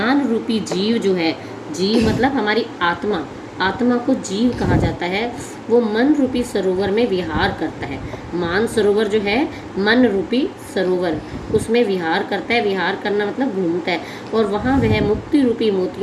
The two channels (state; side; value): identical; both; correlation 1.00